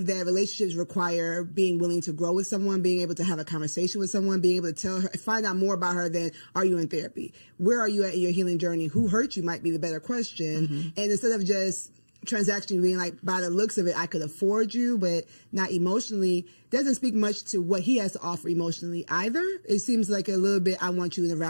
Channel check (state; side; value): inverted; both; correlation -1.00